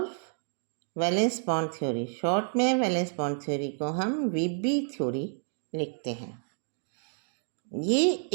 valence bond theory, short में वैलेंस बॉन्ड थ्योरी को हम VB थ्योरी लिखते हैं। ये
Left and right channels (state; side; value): silent; left; 58 dB below the other